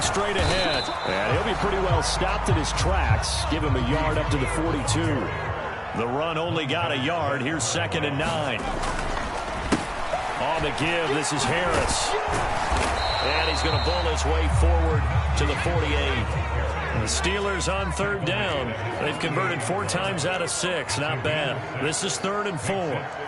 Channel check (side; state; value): both; identical; correlation 1.00